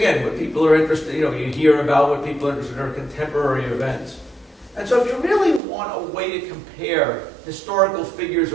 what people are interested, you hear about what people are interested in are contemporary events. And so if you really want a way to compare historical figures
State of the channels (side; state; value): left; drops out; at 5.6 s